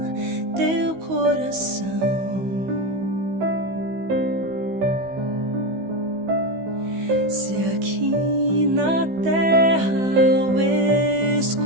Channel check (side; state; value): left; late; 16 ms